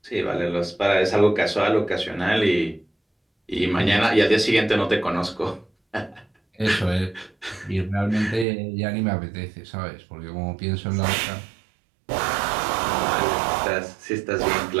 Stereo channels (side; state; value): left; drops out; at 8.5 s